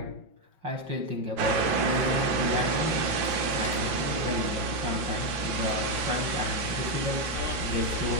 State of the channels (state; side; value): late; left; 6.0 ms